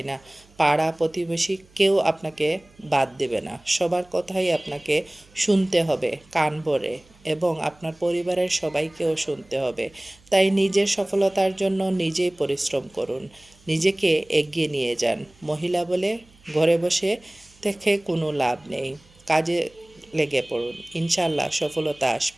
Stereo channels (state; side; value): noise; right; hum, 29 dB below the sound